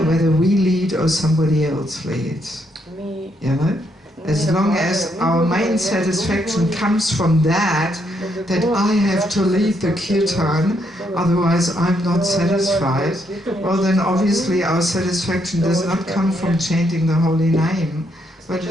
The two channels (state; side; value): normal; both; correlation 0.75